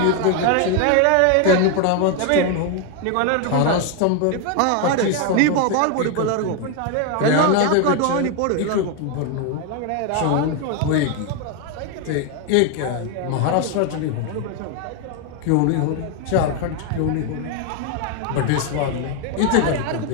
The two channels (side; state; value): both; different; correlation 0.01